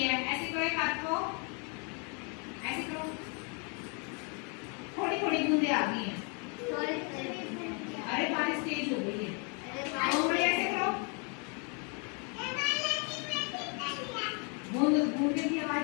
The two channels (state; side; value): quieter; right; 36.3 dB